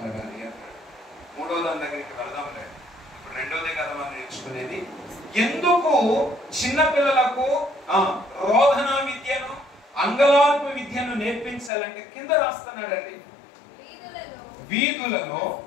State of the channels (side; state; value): right; drops out; at 11.7 s